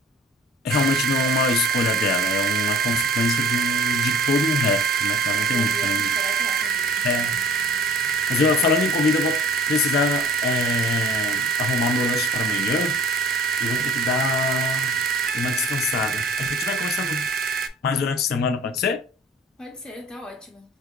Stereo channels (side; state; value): both; normal; correlation 0.47